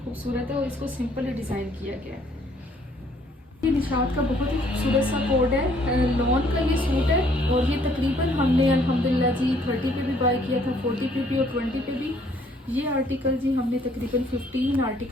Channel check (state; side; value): normal; both; correlation 0.63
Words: खूबसूरत है और इसको सिंपल ही डिज़ाइन किया गया है। ये निशात का बहुत ही खूबसूरत सा कोड है, लॉन का ये सूट है। और ये तकरीबन हमने अल्हम्दुलिल्लाह जी 30 पे भी बाय किया था, 40 पे भी और 20 पे भी। ये आर्टिकल जी हमने तकरीबन 15